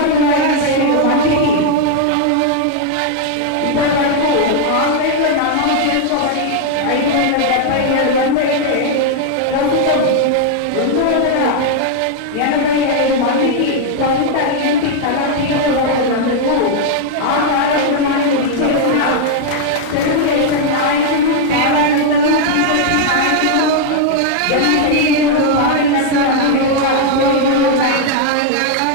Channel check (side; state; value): both; different; correlation 0.00